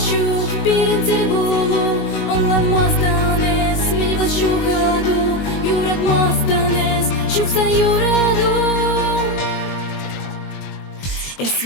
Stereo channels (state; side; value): late; right; 21 ms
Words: pirintil bulu, anlanmastanes, minivat shugadu, yuratmastanes, shuksan yuradu.